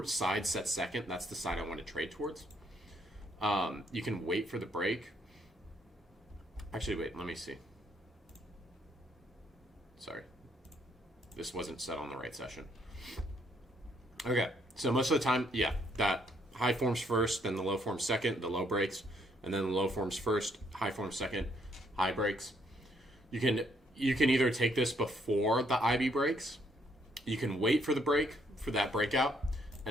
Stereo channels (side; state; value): both; normal; correlation 0.70